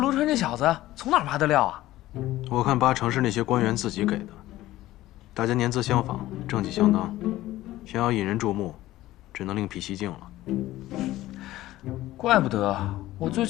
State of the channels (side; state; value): right; quieter; 15.9 dB